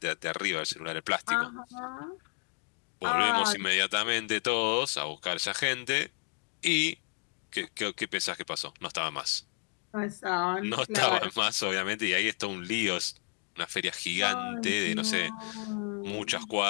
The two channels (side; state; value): right; quieter; 39.9 dB